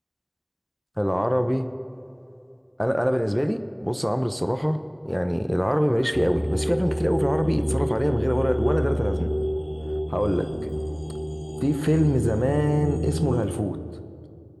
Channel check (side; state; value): both; identical; correlation 1.00